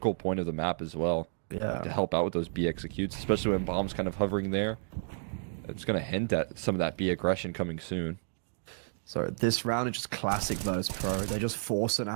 point of the map as well. Yeah. To help out with those B executes, especially when bomb's kind of hovering there. It's going to hint at some of that B aggression coming soon. So this round is just classic Virtus.pro. They're just forcing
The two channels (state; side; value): silent; left; digital silence